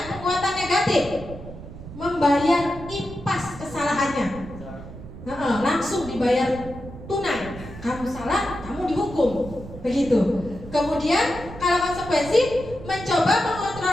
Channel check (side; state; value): right; noise; rumble, 13 dB below the sound